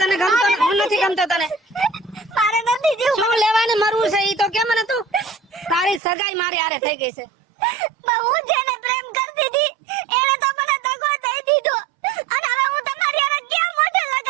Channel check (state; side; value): drops out; left; at 6.0 s